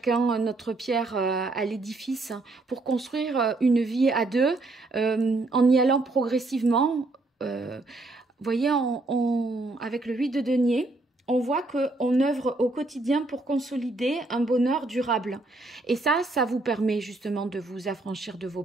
notre pierre à l'édifice pour construire une vie à deux en y allant progressivement. Vous voyez, avec le 8 de denier, on voit qu'on œuvre au quotidien pour consolider un bonheur durable. Et ça vous permet justement de vous affranchir de vos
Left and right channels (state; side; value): quieter; left; 3.0 dB